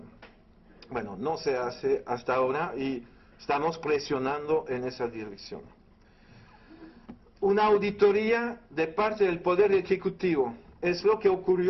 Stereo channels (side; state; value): both; identical; correlation 1.00